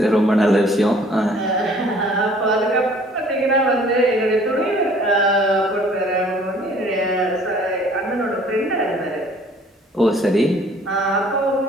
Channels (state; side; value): normal; both; correlation 0.55